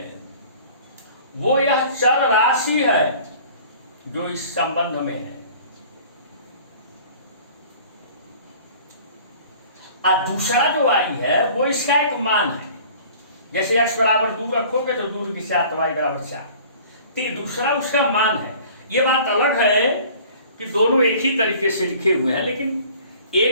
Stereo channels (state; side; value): inverted; both; correlation -0.48